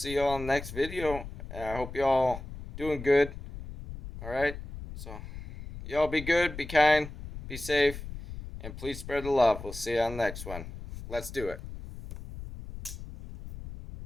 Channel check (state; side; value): noise; left; rumble, 11 dB below the sound